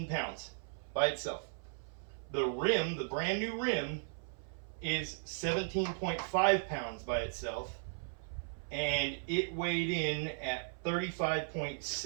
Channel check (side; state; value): left; silent; 53 dB below the other